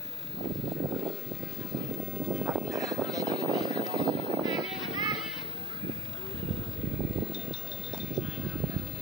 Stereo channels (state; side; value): normal; both; correlation 0.41